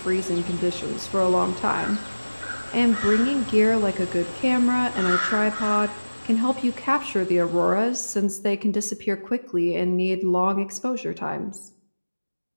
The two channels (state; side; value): inverted; both; correlation -1.00